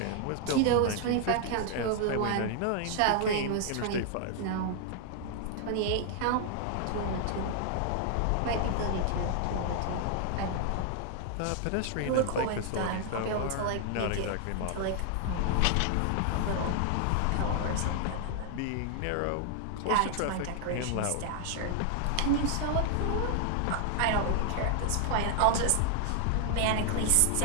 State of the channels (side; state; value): both; different; correlation 0.00